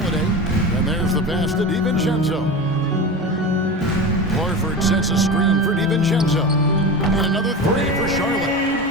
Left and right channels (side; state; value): both; normal; correlation 0.27